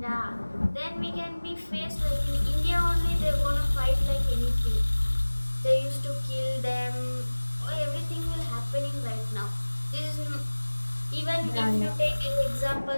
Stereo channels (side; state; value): both; inverted; correlation -1.00